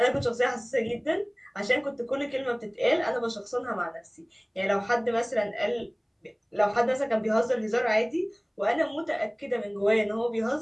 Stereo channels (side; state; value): both; identical; correlation 1.00